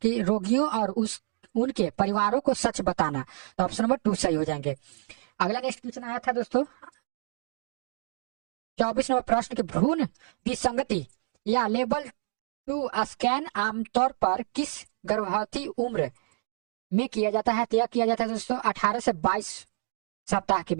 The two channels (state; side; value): silent; left; digital silence